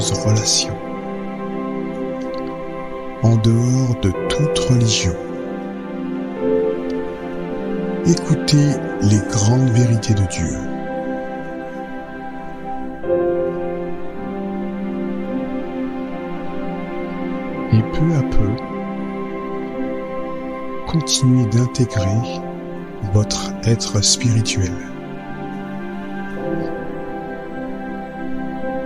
relation en dehors de toute religion. Écoutez les grandes vérités de Dieu. Et peu à peu, continuez d'intégrer votre être spirituel.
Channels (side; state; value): both; identical; correlation 1.00